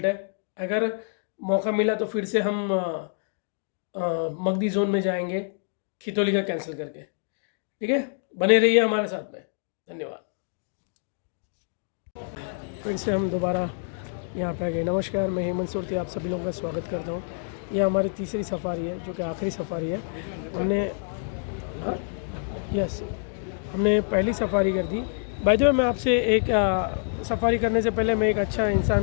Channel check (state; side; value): silent; right; digital silence